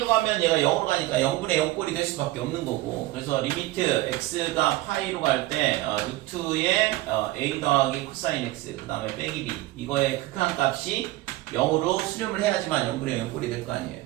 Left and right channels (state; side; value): quieter; left; 17.7 dB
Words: 가면 얘가 0으로 가니까 0분의 0꼴이 될 수밖에 없는 거고. 그래서 리미트 x가 파이로 갈 때 루트의 a 더하기 코사인 x 그 다음에 빼기 b 이거의 극한값이 0으로 수렴을 해야지만 0분의 0꼴이 될 거 아니에요.